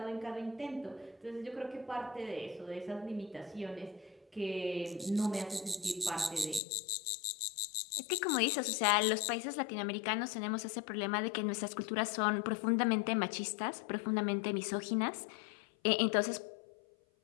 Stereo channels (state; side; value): drops out; right; at 6.6 s